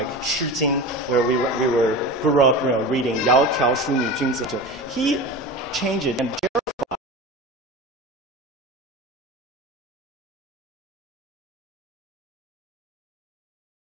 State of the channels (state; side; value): normal; both; correlation 0.30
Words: Shi Jing, where we grew up reading Yao Tiao Shu Nu Jun Zi. He changed it and